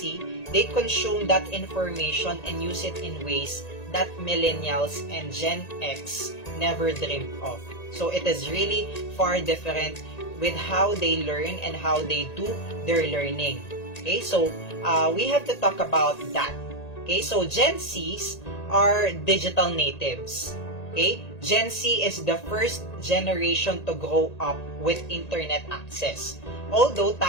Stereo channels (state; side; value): late; right; 1.9 ms